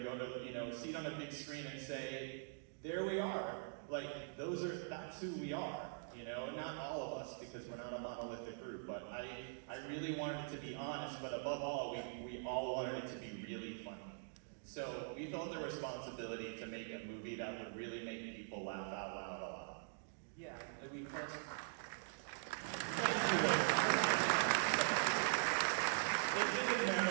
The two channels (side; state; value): left; silent; digital silence